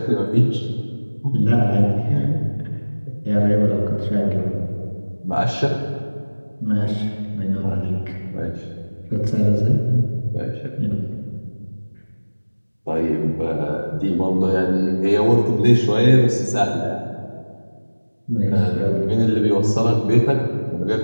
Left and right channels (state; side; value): inverted; both; correlation -1.00